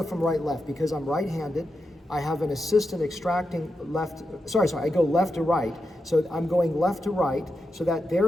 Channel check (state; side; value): normal; both; correlation 0.87